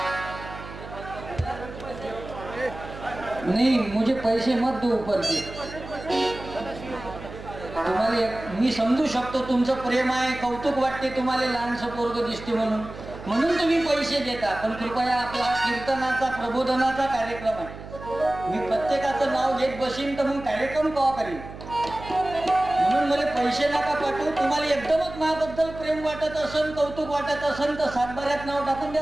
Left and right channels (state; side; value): noise; right; hum, 13 dB below the sound